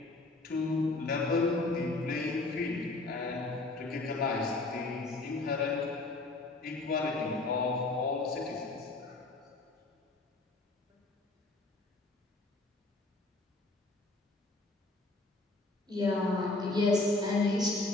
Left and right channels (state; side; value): quieter; right; 3.1 dB